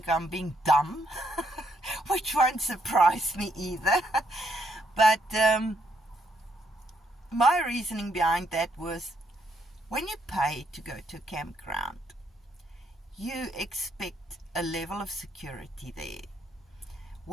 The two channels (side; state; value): both; normal; correlation 0.74